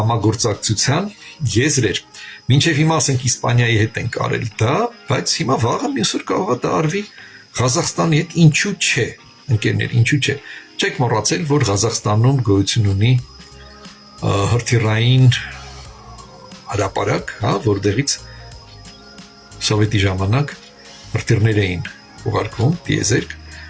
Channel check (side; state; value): both; identical; correlation 1.00